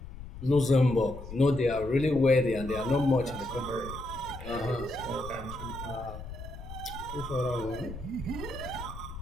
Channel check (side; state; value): left; noise; rumble, 12 dB below the sound